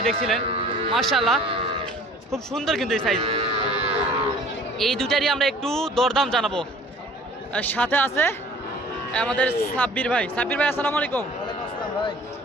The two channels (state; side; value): normal; both; correlation 0.49